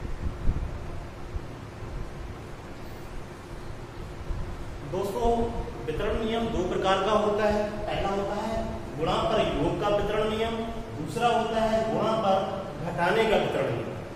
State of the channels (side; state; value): both; identical; correlation 1.00